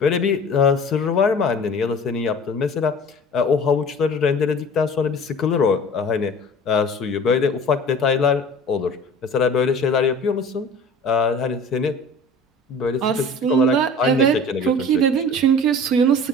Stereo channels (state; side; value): normal; both; correlation 0.42